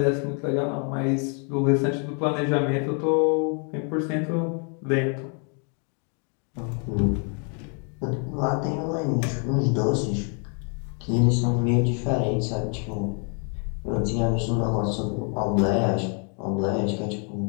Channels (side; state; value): right; quieter; 39.9 dB